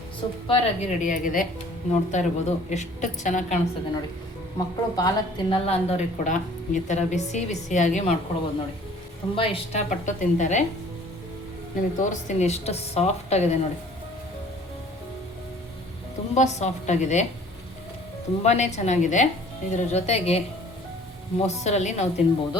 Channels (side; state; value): both; normal; correlation 0.52